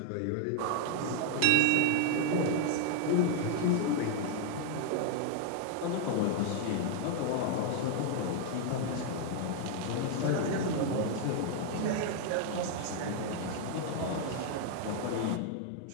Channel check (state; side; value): different; both; correlation 0.00